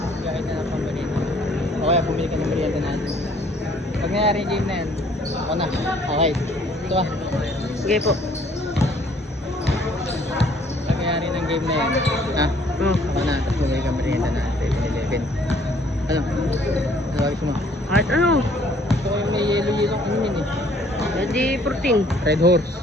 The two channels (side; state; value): both; normal; correlation 0.60